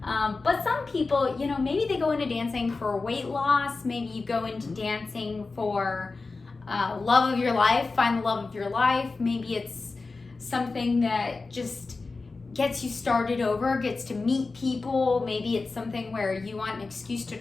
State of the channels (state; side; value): quieter; right; 3.9 dB